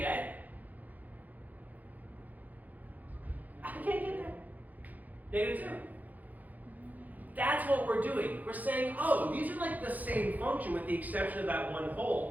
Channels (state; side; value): late; left; 0.081 ms